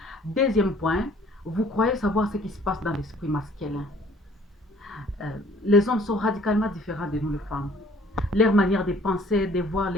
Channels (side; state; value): both; normal; correlation 0.56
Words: Deuxième point, vous croyez savoir ce qui se passe dans l'esprit masculin. Les hommes sont radicalement différents de nous les femmes. Leur manière de penser, de voir